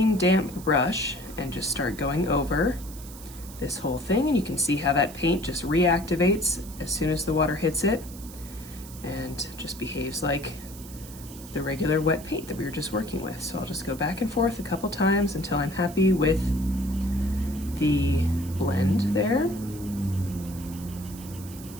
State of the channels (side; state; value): right; noise; hiss, 17 dB below the sound